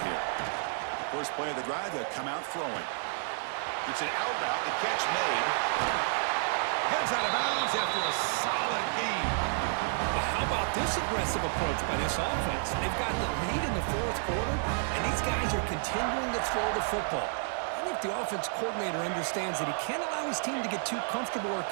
here? First play of the drive, they'll come out throwing. It's an out route. The catch made. Heads out of bounds after a solid game. But how about this aggressive approach by this offense? They've got the lead in the 4th quarter, and these guys are continuing to throw the football. I think the offense coordinator understands that he can't allow his team to get too comfortable or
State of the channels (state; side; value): silent; left; digital silence